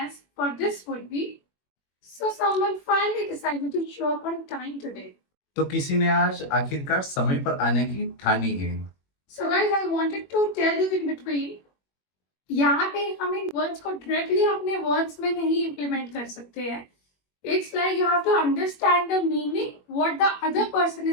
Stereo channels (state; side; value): late; right; 21 ms